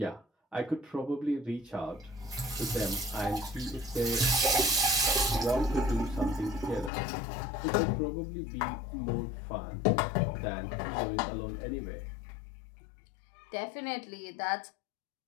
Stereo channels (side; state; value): right; drops out; at 6.9 s